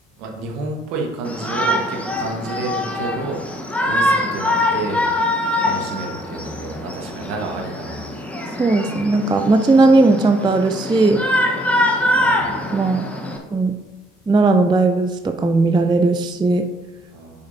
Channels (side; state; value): both; normal; correlation 0.68